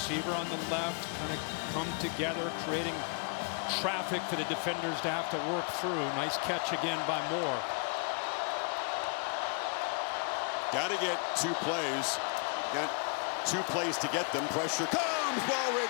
on the left, kind of come together, creating traffic for the defenders to have to work through. Nice catch again by Moore. Got to get 2 plays. Got 2 plays to get them. Pressure comes, ball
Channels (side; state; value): right; quieter; 38.6 dB